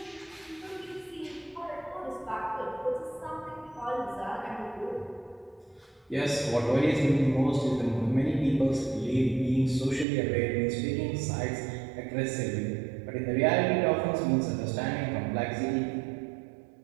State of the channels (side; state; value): left; drops out; at 10.1 s